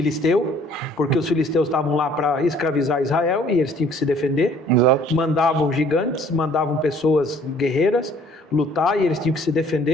porque os filisteus estavam lá para escravizar Israel e eles tinham que se defender. Exato. Mandavam gigantes, mandavam pessoas guerreiras lutar e eles tinham que se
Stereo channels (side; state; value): both; normal; correlation 0.57